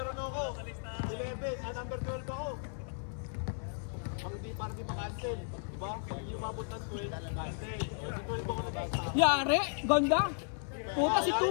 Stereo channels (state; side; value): silent; right; 55 dB below the other